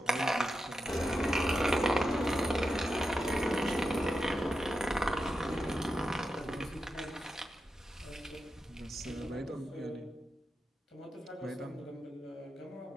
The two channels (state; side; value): normal; both; correlation 0.89